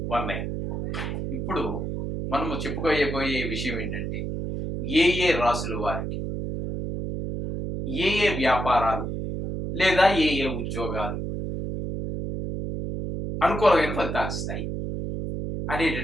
ఇప్పుడు మనము చెప్పుకోబోయే విషయం ఏంటంటే, ఏ రాసుల వారికి ఏ వ్యాపారాలు లేదా ఏ ఉద్యోగాలు అనుకూలమైన ఫలితాలు ఇస్తాయి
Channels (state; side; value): noise; right; hum, 4 dB below the sound